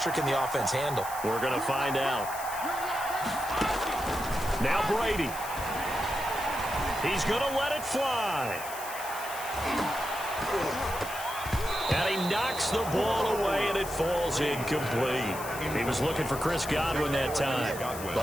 can the offense handle? We're going to find out. Now Brady. He's going to let it fly. And he knocks the ball away, and it falls incomplete. He was looking for Chris Godwin that time,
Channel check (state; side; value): noise; left; hiss, 11 dB below the sound